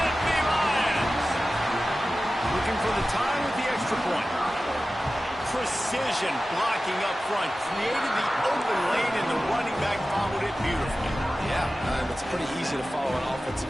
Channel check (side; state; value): both; normal; correlation 0.95